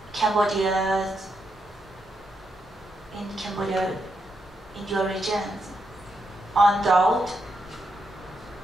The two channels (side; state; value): both; normal; correlation 0.82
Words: Cambodia, in your region on drought